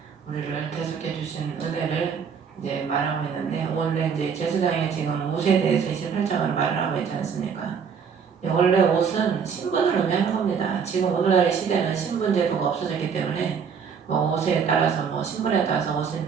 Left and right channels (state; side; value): quieter; left; 6.6 dB